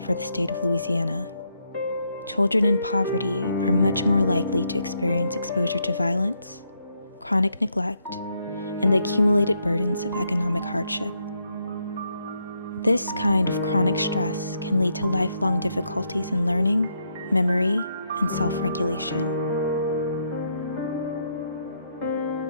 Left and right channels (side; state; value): both; inverted; correlation -0.76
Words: the state of Louisiana. Children in poverty are much more likely to experience exposure to violence, chronic neglect, and the accumulated burdens of economic hardship. This kind of chronic stress can lead to lifelong difficulties in learning, memory, and self-regulation.